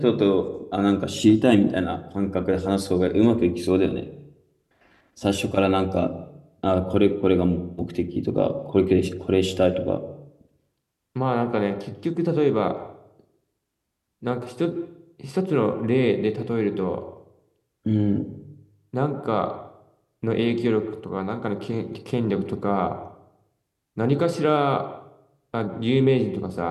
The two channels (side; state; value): both; identical; correlation 1.00